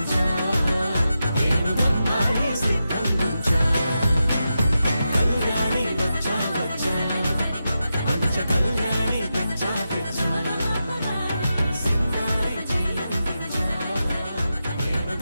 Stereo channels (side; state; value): both; inverted; correlation -0.89